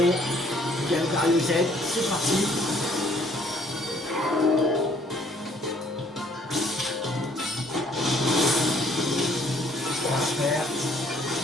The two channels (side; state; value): both; normal; correlation 0.61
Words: Galvario Z, c'est parti. Transfert.